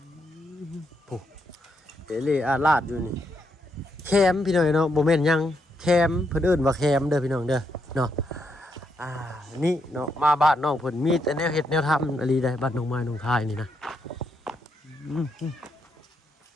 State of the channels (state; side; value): normal; both; correlation 0.79